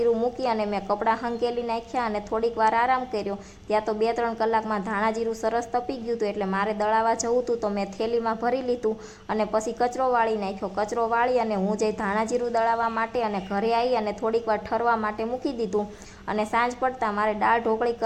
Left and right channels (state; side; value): identical; both; correlation 1.00